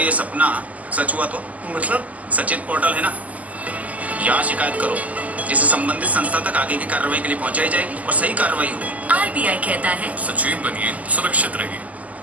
ये सपना सच हुआ तो? मतलब? सचेत पोर्टल है ना, यहाँ शिकायत करो, जिसे संबंधित संस्था तक आगे की कार्रवाई के लिए पहुंचाई जाएगी और सही कार्रवाई होगी। आरबीआई कहता है सचेत बनिए, सुरक्षित रहिए।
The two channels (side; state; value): left; late; 0.075 ms